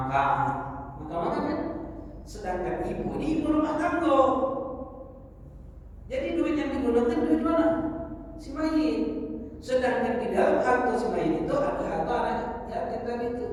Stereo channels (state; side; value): identical; both; correlation 1.00